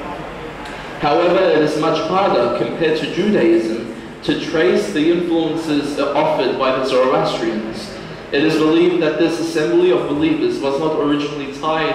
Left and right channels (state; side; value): identical; both; correlation 1.00